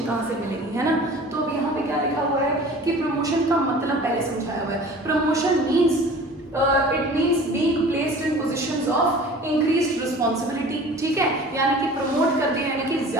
कहाँ से मिलेगी, है ना। तो अब यहाँ पे क्या लिखा हुआ है कि प्रमोशन का मतलब पहले समझाया हुआ है। Promotion means it means being placed in positions of increased responsibility, ठीक है, यानी कि प्रमोट कर दिया, यानी कि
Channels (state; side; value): normal; both; correlation 0.43